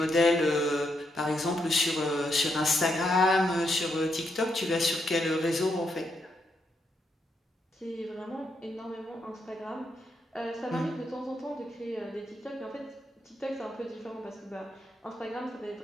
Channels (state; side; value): normal; both; correlation 0.80